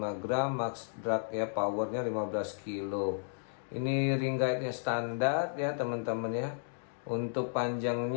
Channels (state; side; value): silent; right; digital silence